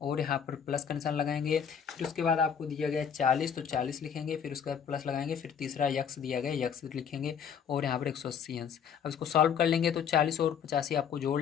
और यहाँ पर प्लस का निशान लगाएंगे। फिर उसके बाद आपको दिया गया है 40, तो 40 लिखेंगे, फिर उसके बाद प्लस लगाएंगे, फिर तीसरा यक्स दिया गया, यक्स लिखेंगे और यहाँ पर 180 अंश। अब इसको सॉल्व कर लेंगे तो 40 और 85 आपको जोड़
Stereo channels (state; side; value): quieter; right; 7.6 dB